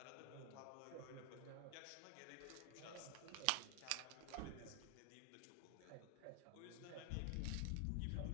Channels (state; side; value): different; both; correlation 0.00